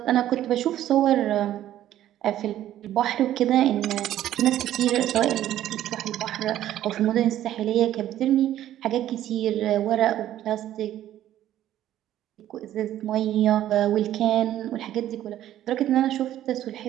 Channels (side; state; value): left; quieter; 12.4 dB